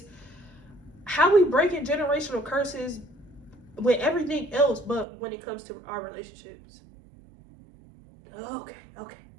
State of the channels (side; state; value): left; drops out; at 5.1 s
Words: how we breaking generational curses with everything else, but when it comes to our relationships. Okay.